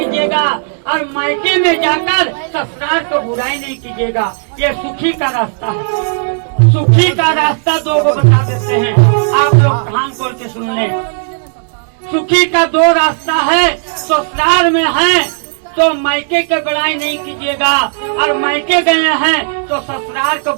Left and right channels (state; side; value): silent; left; digital silence